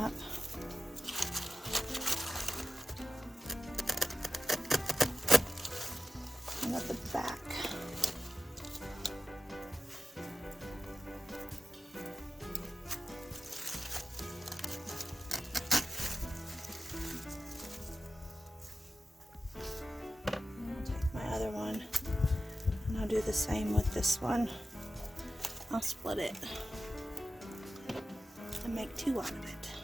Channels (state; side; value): normal; both; correlation 0.93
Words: up. And at the back. Do the same with this one. I'll split it and make 2 out of it.